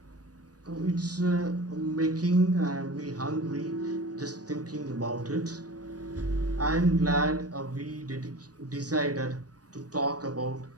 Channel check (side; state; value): left; late; 0.68 ms